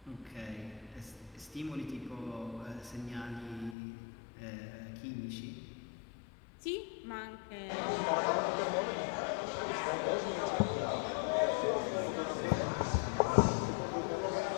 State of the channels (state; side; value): drops out; right; at 3.8 s